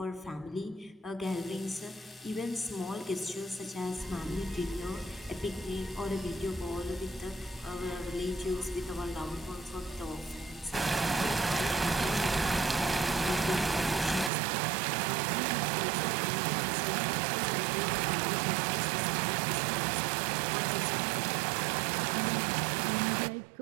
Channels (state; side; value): drops out; left; at 14.3 s